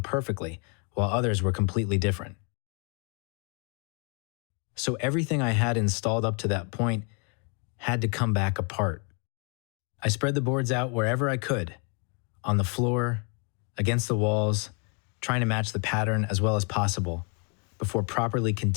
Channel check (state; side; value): quieter; right; 37.2 dB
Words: perfectly, while others were completely different. So everything I had installed up to that point had to come back apart. I spread the boards out wherever I could, on the floor, against the walls, trying to match the pattern as well as possible, before properly